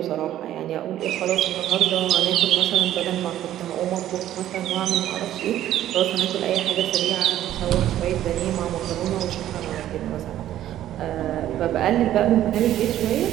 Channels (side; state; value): left; quieter; 12.5 dB